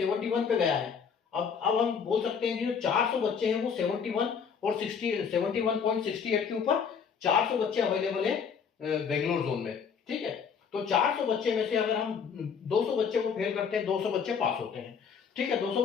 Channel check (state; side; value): quieter; right; 6.5 dB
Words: पे गया है। अब हम बोल सकते हैं कि जो 400 बच्चे हैं वो 71 और 71.68 के ऊपर 400 बच्चे अवेलेबल है बेंगलोर जोन में। ठीक है, तो 400 बच्चे में से अगर हम 200 बच्चे को फेल करते हैं, 200 बच्चे पास होते हैं। ठीक है, 200